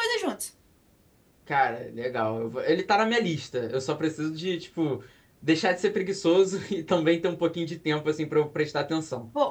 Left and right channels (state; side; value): identical; both; correlation 1.00